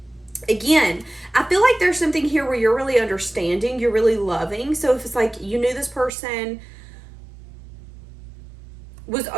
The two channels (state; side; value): drops out; left; at 6.1 s